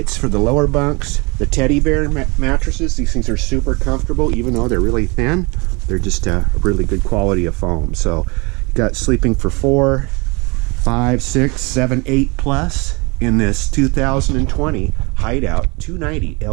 for the lower bunks. The teddy bear mattresses, these things are super comfortable even though they're really thin. They're just a really good quality of foam. So you got sleeping for 4, 5, 6, 7, 8 plus in this 2020 Hideout 290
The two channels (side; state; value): left; quieter; 27.8 dB